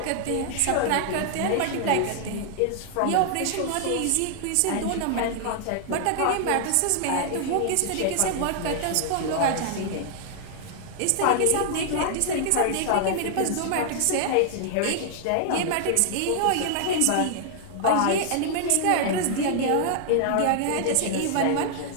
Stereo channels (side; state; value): both; different; correlation -0.01